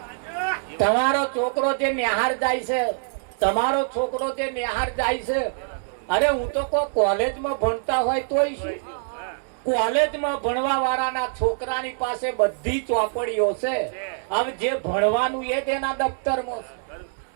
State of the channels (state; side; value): silent; left; digital silence